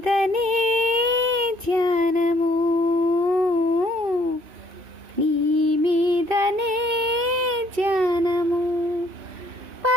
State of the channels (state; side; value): late; left; 2.6 ms